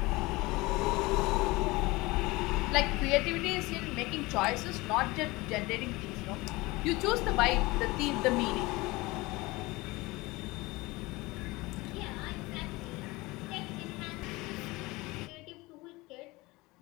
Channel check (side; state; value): right; quieter; 22.0 dB